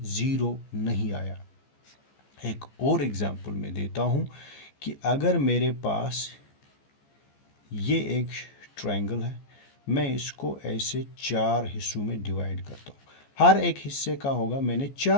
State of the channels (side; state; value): right; late; 14 ms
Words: ज़ीरो नहीं आया। एक और एग्जांपल मैं देता हूँ कि अगर मेरे पास ये एक ट्रायंगल है, मैं इसको ऐसे 4 हिस्सों में डिवाइड करता हूँ, हर एक हिस्से का होगा, मैंने